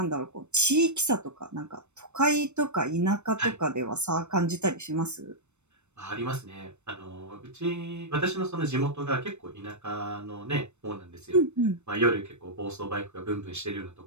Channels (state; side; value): late; left; 0.82 ms